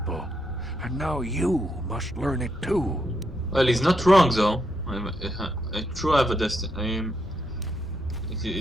and now you must learn it too. Well, he's not wrong though. I truly have a destiny.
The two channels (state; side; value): normal; both; correlation 0.79